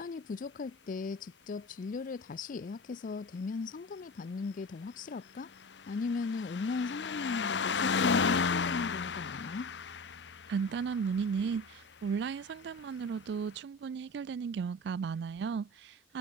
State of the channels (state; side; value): normal; both; correlation 0.31